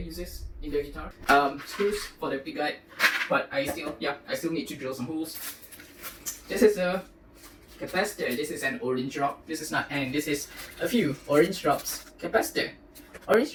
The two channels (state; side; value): identical; both; correlation 1.00